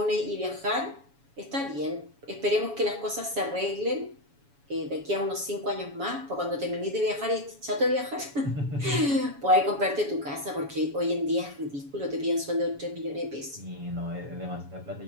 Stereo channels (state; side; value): late; left; 7.1 ms